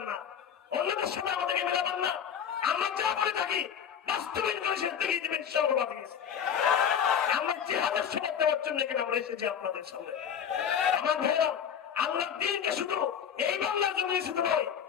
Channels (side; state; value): right; quieter; 8.2 dB